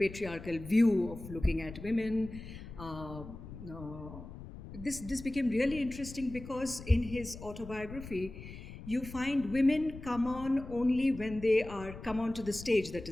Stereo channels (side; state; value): left; noise; rumble, 13 dB below the sound